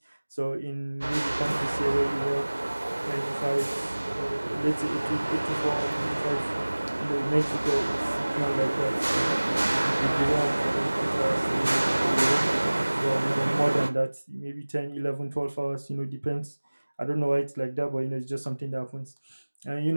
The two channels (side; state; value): both; inverted; correlation -1.00